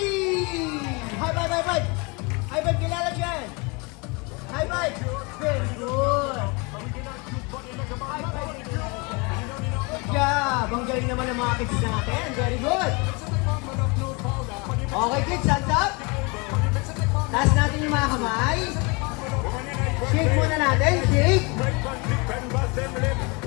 High five, high five! High five, kilala dyan! High five! Very good! High five! Good job! Ang galing naman ng mga kids natin. Very good! Okay kids, hands up! Taas natin yung mga kamay. Shake muna natin, shake!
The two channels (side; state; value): right; quieter; 29.3 dB